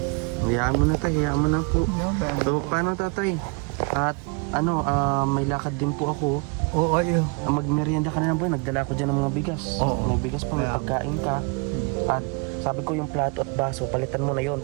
Hayaan mo na, tay. Hayaan mo na po. So, paano, tatay? At ano, may lakad din po ako. Oo, ayun. Magmerienda ka na lang po. Nagdala ko dyan ng mga bigas. Oo. May bigas pa, may Kaya- pagkain ka. At sabi ko yung plato at baso, palitan mo na yon.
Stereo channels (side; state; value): left; quieter; 32.0 dB